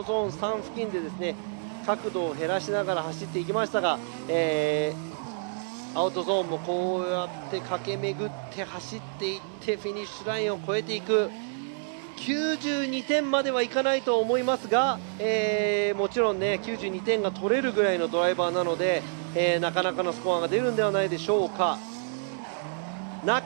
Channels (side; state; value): left; silent; digital silence